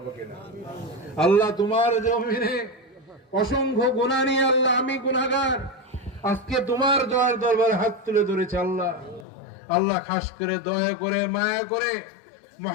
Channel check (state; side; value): drops out; right; at 9.2 s